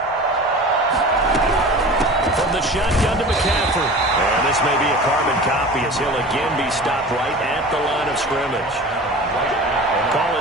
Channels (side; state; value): both; normal; correlation 0.37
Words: From the shotgun to McCaffrey. And this may be a carbon copy as he'll again be stopped right at the line of scrimmage. Call